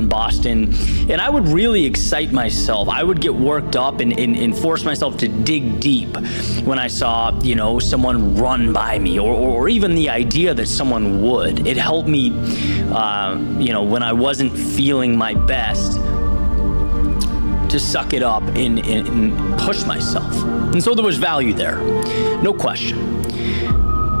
Boston, and I would really excite myself. I would get worked up and force myself to dig deep when I saw, someone run by me, or even the idea that someone would. It helped me, when I wasn't feeling my best, to suck it up and push myself. And so there was value there, no question.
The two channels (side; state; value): both; inverted; correlation -1.00